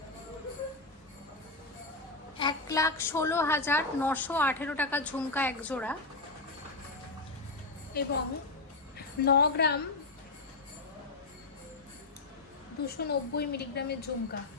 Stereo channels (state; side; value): quieter; right; 3.3 dB